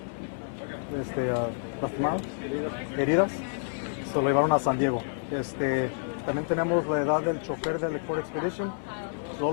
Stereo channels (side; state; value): right; silent; digital silence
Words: lastimados, heridas. Se lo llevaron a San Diego. También tenemos la edad del chofer del Ford Expedition.